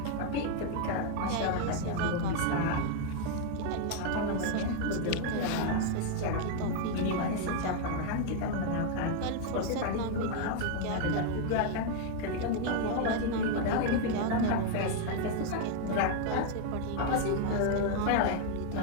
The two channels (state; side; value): different; both; correlation 0.00